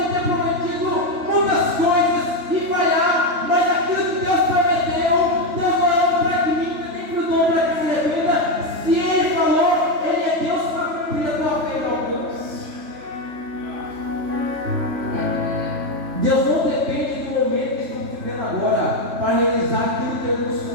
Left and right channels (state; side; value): late; left; 3.3 ms